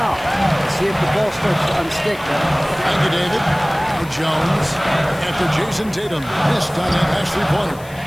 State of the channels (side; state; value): left; noise; hiss, 22 dB below the sound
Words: See if the ball starts to unstick. Thank you, David. Now Jones after Jason Tatum missed on that last three-pointer.